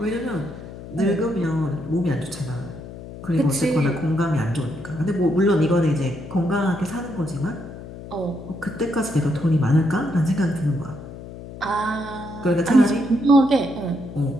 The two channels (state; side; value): noise; left; hum, 13 dB below the sound